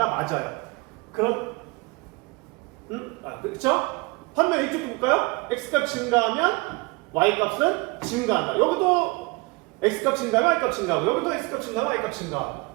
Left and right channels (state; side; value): quieter; left; 26.3 dB